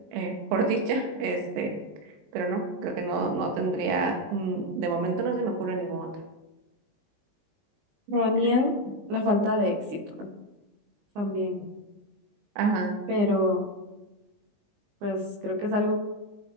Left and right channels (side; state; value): left; late; 19 ms